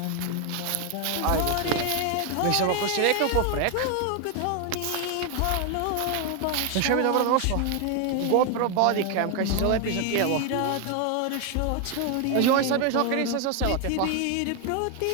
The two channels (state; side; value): different; both; correlation 0.01